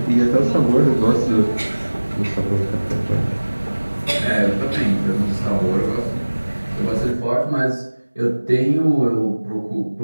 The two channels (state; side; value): inverted; both; correlation -1.00